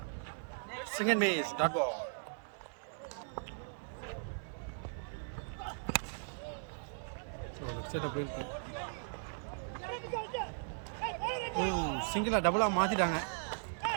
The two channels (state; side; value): silent; left; 53 dB below the other